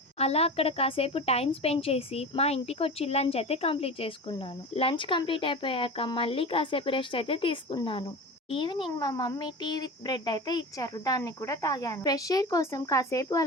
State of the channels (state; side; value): normal; both; correlation 0.30